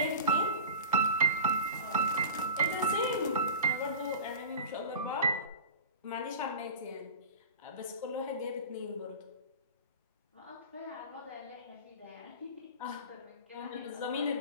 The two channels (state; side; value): inverted; both; correlation -0.34